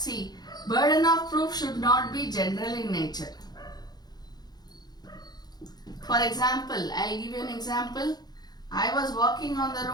See, burden of proof should not be general in nature. For example, I'll give you an example. I was walking on the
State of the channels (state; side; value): late; right; 0.19 ms